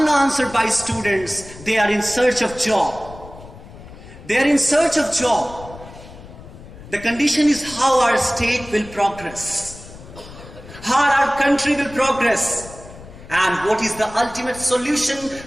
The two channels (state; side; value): noise; left; rumble, 17 dB below the sound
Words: by students. They are in search of job. They are in search of job. The condition is how our state will progress, how our country will progress, and what is the ultimate solution